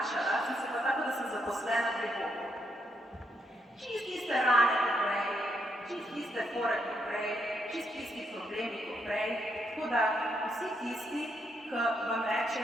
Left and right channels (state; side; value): normal; both; correlation 0.77